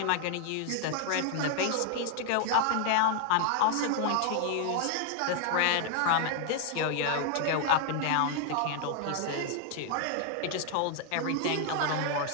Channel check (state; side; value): different; both; correlation 0.00